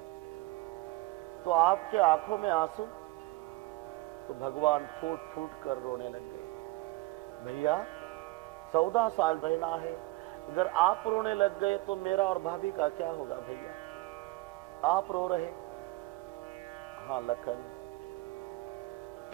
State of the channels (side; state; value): left; quieter; 20.7 dB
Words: तो आपके आंखों में आंसू? तो भगवान फूट फूट कर रोने लग गए. भैया 14 साल रहना है, अगर आप रोने लग गए तो मेरा और भाभी का क्या होगा भैया? आप रो रहे? हाँ लखन.